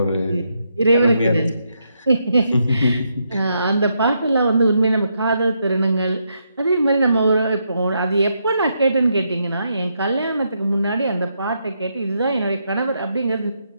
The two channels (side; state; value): both; inverted; correlation -0.80